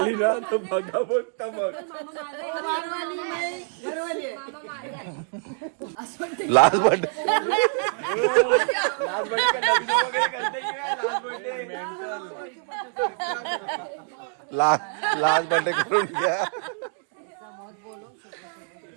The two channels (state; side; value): silent; left; 61 dB below the other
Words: लास्ट बट लास्ट बर्थडे करून घ्या.